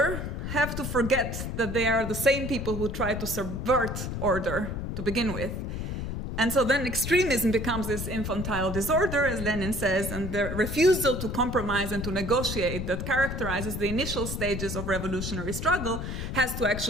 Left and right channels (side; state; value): left; noise; rumble, 4 dB below the sound